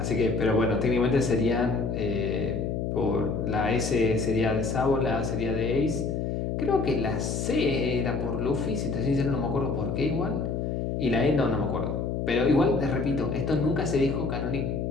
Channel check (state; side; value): noise; left; hum, 1 dB below the sound